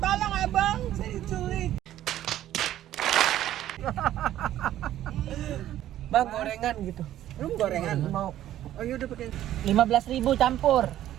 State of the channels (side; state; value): left; quieter; 12.6 dB